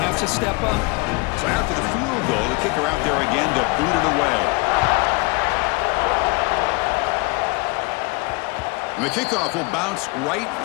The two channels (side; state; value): right; quieter; 26.2 dB